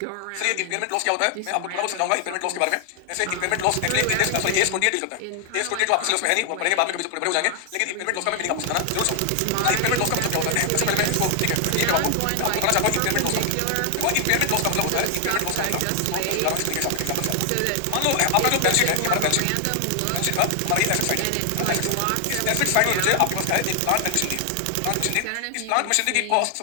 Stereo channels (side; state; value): both; different; correlation 0.00